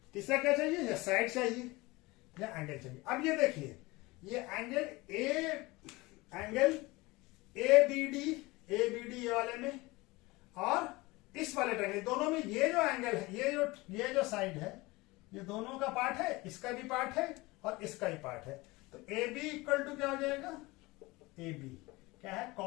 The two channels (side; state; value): right; quieter; 22.2 dB